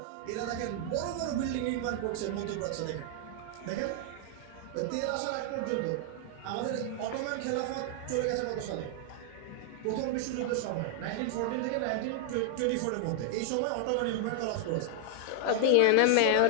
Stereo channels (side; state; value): both; different; correlation 0.00